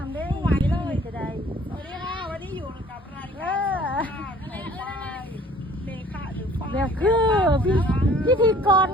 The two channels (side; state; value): both; normal; correlation 0.53